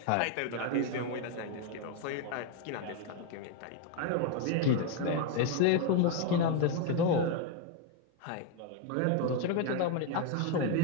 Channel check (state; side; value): different; both; correlation 0.01